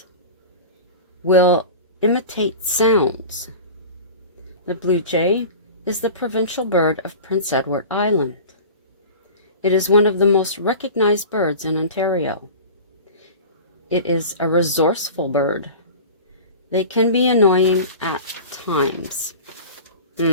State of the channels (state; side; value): inverted; both; correlation -0.36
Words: Will imitate sounds. The blue jay is the provincial bird of Prince Edward Island. It is one of the most recognized birds in Ontario. It is a resourceful bird. They can be annoying at times.